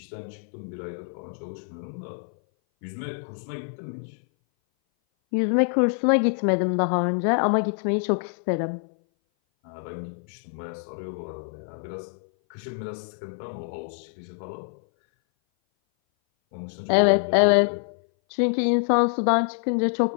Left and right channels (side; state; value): right; silent; 58 dB below the other